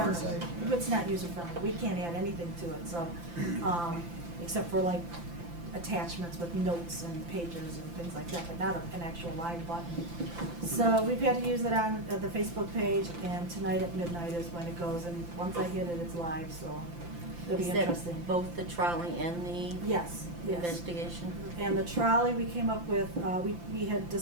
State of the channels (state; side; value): late; left; 5.8 ms